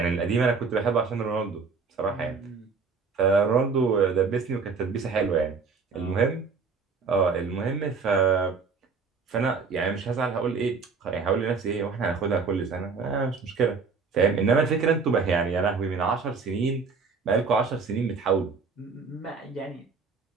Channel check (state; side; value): quieter; left; 5.0 dB